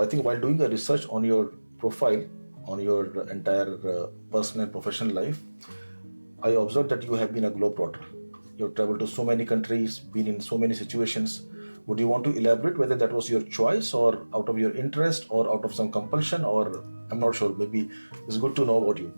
think while doing a research on your profile, on your entire personal and professional life, I observed that you have been a globe-trotter. You have traveled to so many countries, been in so many situations. Would you want to elaborate whether that was your choice or out of your interest or out of some compulsion, or I'm not sure, maybe it's good to know about you.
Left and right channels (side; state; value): both; inverted; correlation -1.00